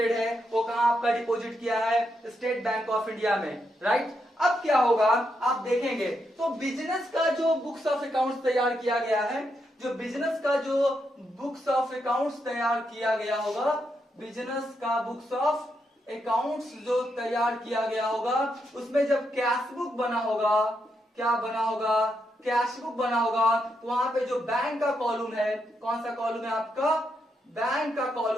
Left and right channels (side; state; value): both; normal; correlation 0.81